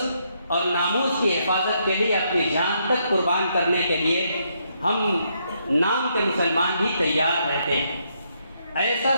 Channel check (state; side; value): inverted; both; correlation -0.75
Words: اور ناموس کی حفاظت کے لیے اپنی جان تک قربان کرنے کے لیے ہم نام کے مسلمان بھی تیار رہتے ہیں۔ ایسا